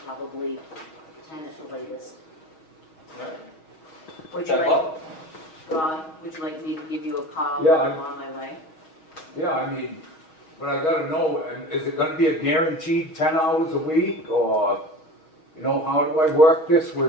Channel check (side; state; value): right; late; 6.3 ms